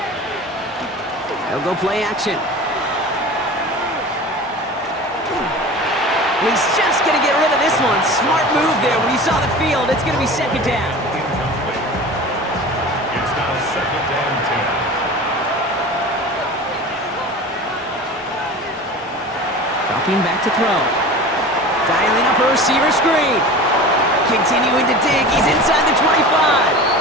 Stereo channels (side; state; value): both; normal; correlation 0.36